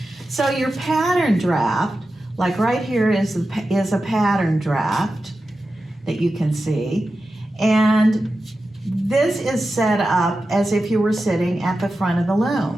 So your pattern draft, like right here is a pattern draft that you can see. And this is set up as if you were sitting at the front of the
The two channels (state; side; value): normal; both; correlation 0.92